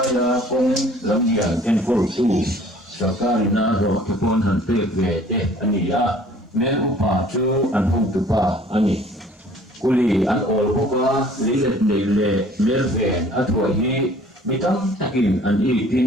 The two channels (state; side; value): normal; both; correlation 0.53